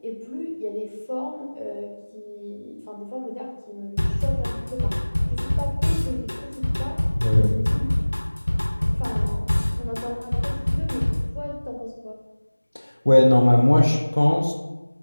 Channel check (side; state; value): both; inverted; correlation -1.00